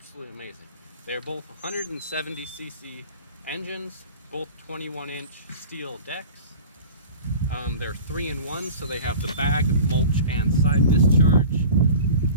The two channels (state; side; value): inverted; both; correlation -0.39